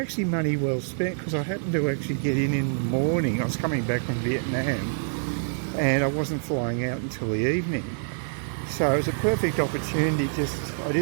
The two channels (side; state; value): left; silent; digital silence